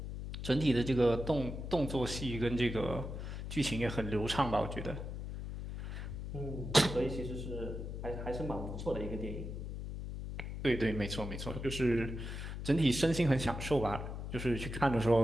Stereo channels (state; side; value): noise; left; hum, 6 dB below the sound